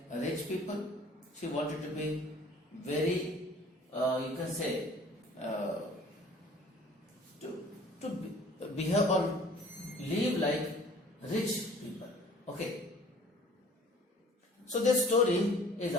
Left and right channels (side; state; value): both; normal; correlation 0.51